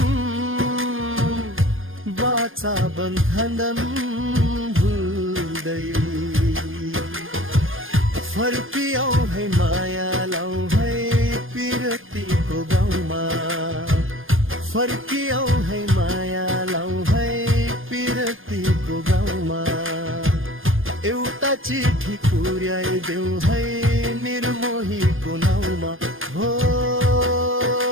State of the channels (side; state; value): left; late; 0.59 ms